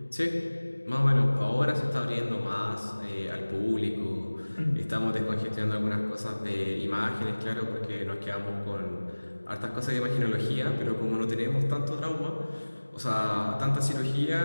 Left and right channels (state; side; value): inverted; both; correlation -1.00